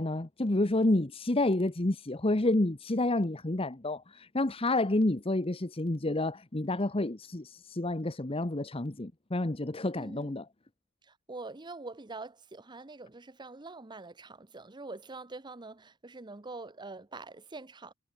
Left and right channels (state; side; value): normal; both; correlation 0.68